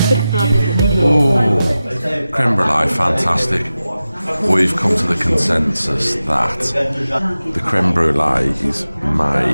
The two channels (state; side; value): inverted; both; correlation -0.94